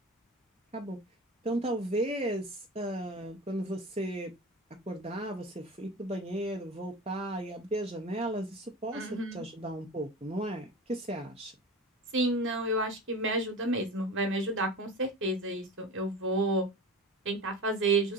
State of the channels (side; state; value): both; normal; correlation 0.32